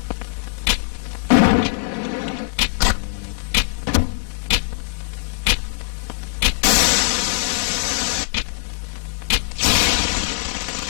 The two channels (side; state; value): right; silent; digital silence